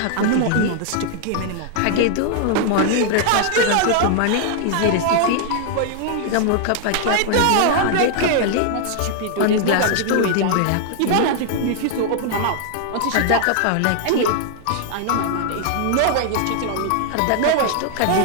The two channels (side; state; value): both; different; correlation -0.01